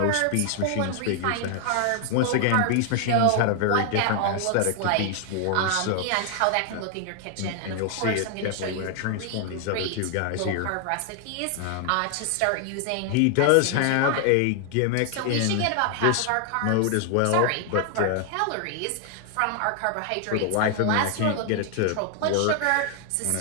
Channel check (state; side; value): different; both; correlation 0.00